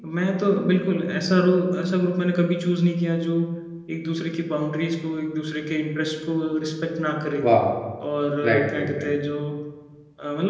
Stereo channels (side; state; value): both; identical; correlation 1.00